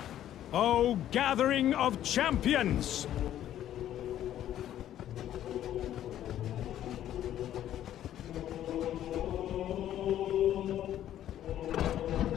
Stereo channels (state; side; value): quieter; right; 11.7 dB